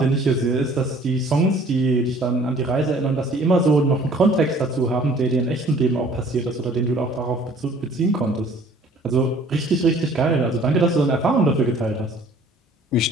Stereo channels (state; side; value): normal; both; correlation 0.55